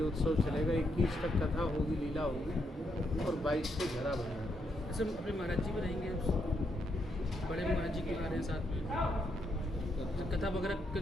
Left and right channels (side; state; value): both; normal; correlation 0.78